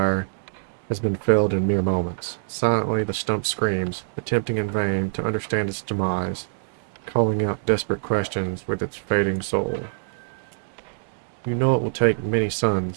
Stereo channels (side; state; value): left; silent; digital silence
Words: has been felled in mere moments. Silently the stump screams, attempting in vain to understand its demise, calling out desperate questions with its fading soul. You know it will take many